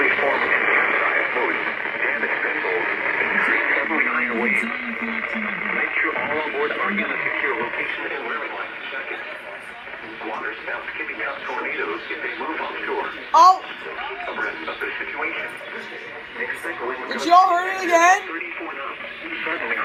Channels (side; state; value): both; identical; correlation 1.00